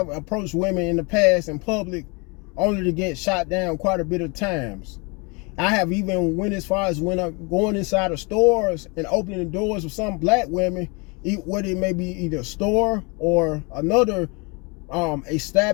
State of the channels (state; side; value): quieter; right; 30.0 dB